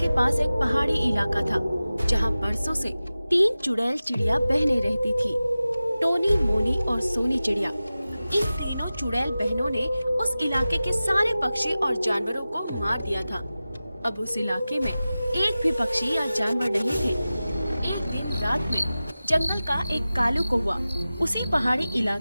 पास एक पहाड़ी इलाका था, जहाँ बरसों से तीन चुड़ैल चिड़िया बहनें रहती थी। टोनी, मोनी और सोनी चिड़िया। इन तीनों चुड़ैल बहनों ने उस इलाके के सारे पक्षी और जानवरों को मार दिया था। अब उस इलाके में एक भी पक्षी या जानवर नहीं थे। एक दिन रात में जंगल का एक कालू कौवा उसी पहाड़ी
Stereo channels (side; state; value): both; inverted; correlation -0.96